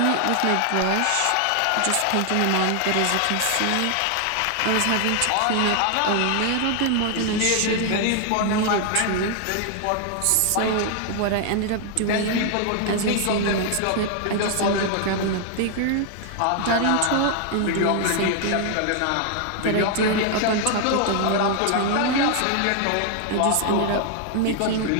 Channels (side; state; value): both; different; correlation 0.00